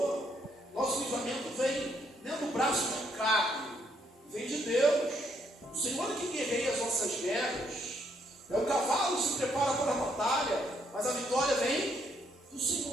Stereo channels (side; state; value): both; normal; correlation 0.72